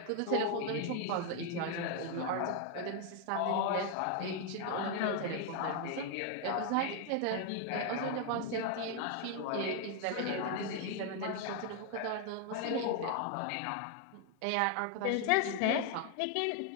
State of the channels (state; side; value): different; both; correlation 0.01